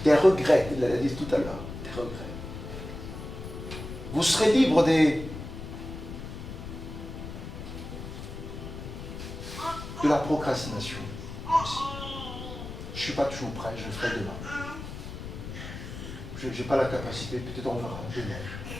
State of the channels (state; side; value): noise; left; rumble, 9 dB below the sound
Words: des regrets, il l'a dit tout à l'heure, des regrets. Vous serez libre de la procrastination aussi. Je ne suis pas toujours prêt, je le ferai demain. Je n'ai pas la capacité, peut-être on verra demain.